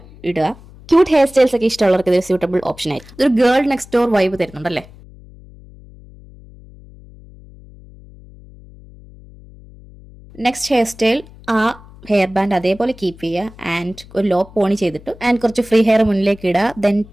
ഇടുക. ക്യൂട്ട് ഹെയർ സ്റ്റൈൽസ് ഒക്കെ ഇഷ്ടമുള്ളവർക്ക് ഇതൊരു സ്യൂട്ടബിൾ ഓപ്ഷൻ ആയിരിക്കും. ഇതൊരു ഗേൾ നെക്സ്റ്റ് ഡോർ വൈബ് തരുന്നുണ്ടല്ലേ. നെക്സ്റ്റ് ഹെയർ സ്റ്റൈൽ ആ ഹെയർ ബാൻഡ് അതേപോലെ കീപ്പ് ചെയ്യുക ആൻഡ് ഒരു ലോ പോണി ചെയ്തിട്ട് ആൻഡ് കുറച്ച് ഫ്രീ ഹെയർ മുന്നിലേക്ക് ഇടുക. Then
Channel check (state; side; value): noise; left; hum, 21 dB below the sound